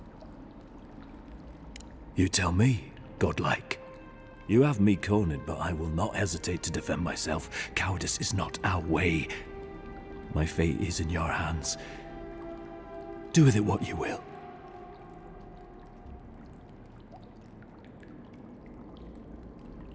You tell me, godlike. You have me cornered, but I will not hesitate to defend myself. Cowardice is not our way. My fate is in your hands. Do with it what you will.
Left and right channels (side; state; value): both; identical; correlation 1.00